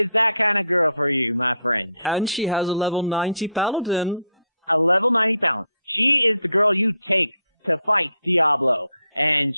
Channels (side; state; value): both; inverted; correlation -0.71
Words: that kind of girl for you, my friend. And she has a level 90 paladin. A level 90 paladin. She is the girl you take to fight Diablo, and